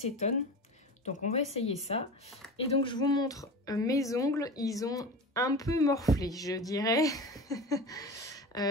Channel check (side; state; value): both; normal; correlation 0.31